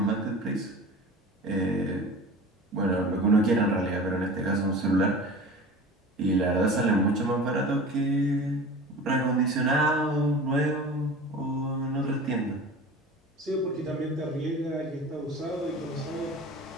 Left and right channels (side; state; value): both; normal; correlation 0.37